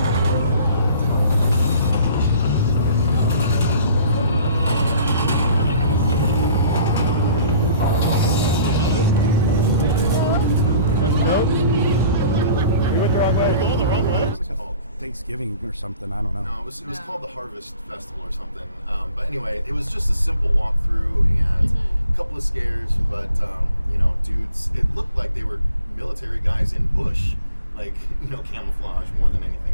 Thanksgiving or something, I don't know. No, it was called the Harvest Festival or something. But anyway, it was just a simple walkthrough and a couple of scares, but dudes, it looked like they were military guys in bush, like, camouflage more than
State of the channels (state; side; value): inverted; both; correlation -0.52